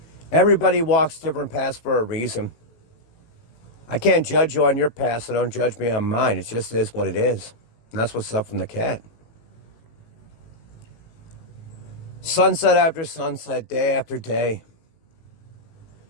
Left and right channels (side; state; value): right; late; 18 ms